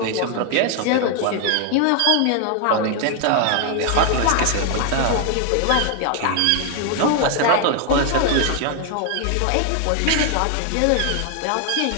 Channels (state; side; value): different; both; correlation 0.01